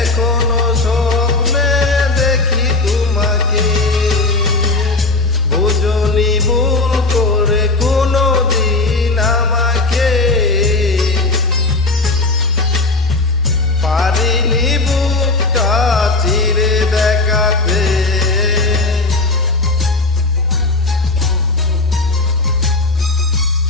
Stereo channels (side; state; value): right; quieter; 3.3 dB